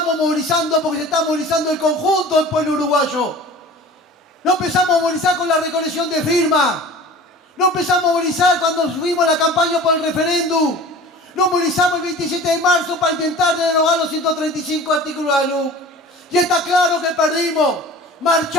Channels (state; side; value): normal; both; correlation 0.41